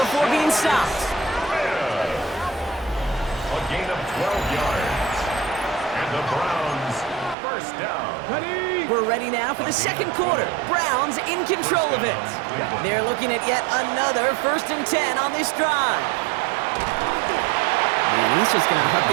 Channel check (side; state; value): left; drops out; at 7.4 s